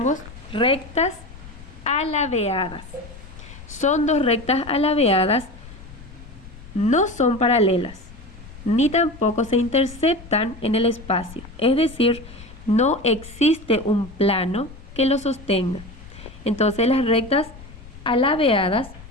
rectas alabeadas. Son dos rectas alabeadas, no son paralelas, ni tampoco se interceptan en el espacio. Es decir, no existe un plano que lo sostenga. Entonces las rectas alabeadas,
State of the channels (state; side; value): noise; left; rumble, 17 dB below the sound